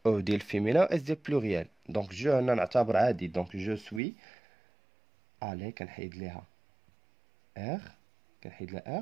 او ديال فيمينا اس ديال بلوريال. دونك جو هنا نعتبر عادي. دونك جو سوي. الي كنحيد ليها ار، كنحيد لها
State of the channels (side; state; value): left; drops out; at 4.0 s